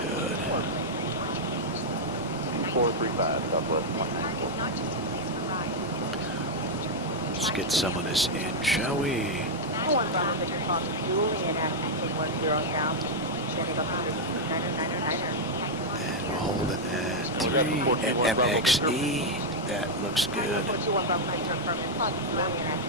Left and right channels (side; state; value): both; normal; correlation -0.02